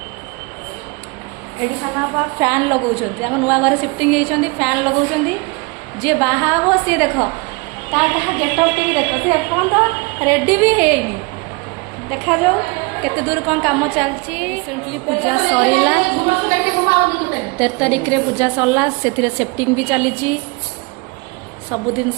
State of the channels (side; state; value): left; quieter; 27.7 dB